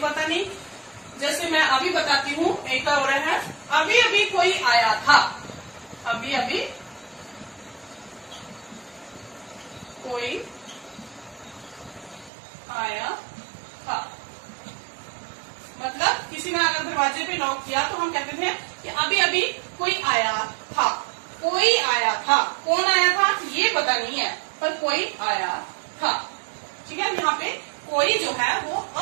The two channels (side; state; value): left; drops out; at 12.3 s